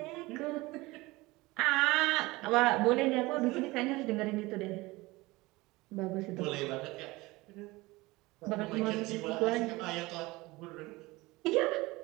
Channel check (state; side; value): quieter; left; 21.4 dB